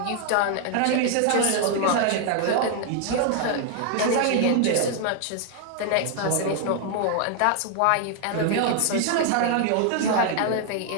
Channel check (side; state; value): both; different; correlation 0.00